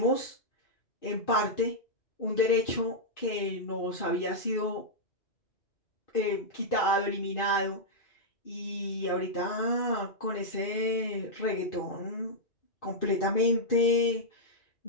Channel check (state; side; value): late; right; 2.4 ms